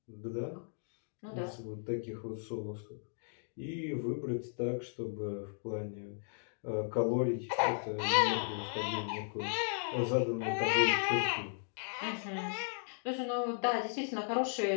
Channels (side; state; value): right; silent; digital silence